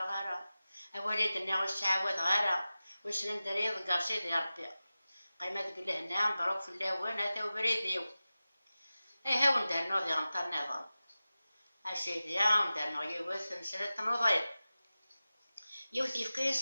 أولادنا والسعوات غارة وسلم دريض قاصيد يا ربي قيمة تقول هنا مبروك في اللاوان هذا وبريديو ها وندار نوضي غنطر نظام أسيدي وندار نوضي يوث مسألة نوضي يوث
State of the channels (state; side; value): inverted; both; correlation -0.95